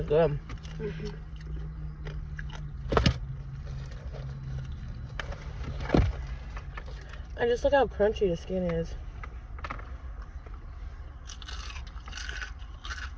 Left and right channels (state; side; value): identical; both; correlation 1.00